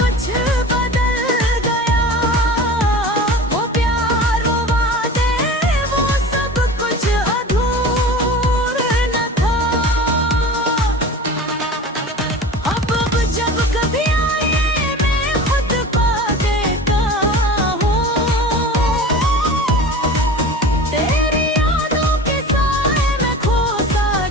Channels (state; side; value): normal; both; correlation 0.36